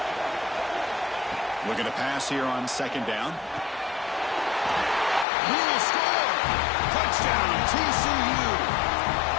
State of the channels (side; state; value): right; drops out; at 5.2 s